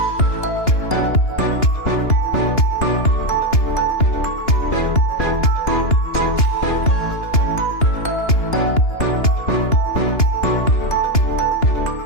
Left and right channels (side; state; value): right; late; 2.9 ms